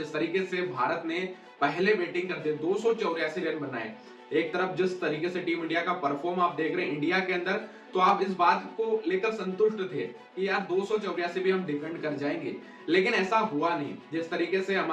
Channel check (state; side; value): identical; both; correlation 1.00